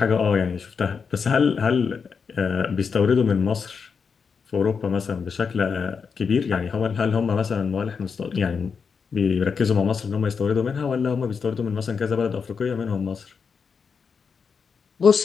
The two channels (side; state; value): right; quieter; 5.8 dB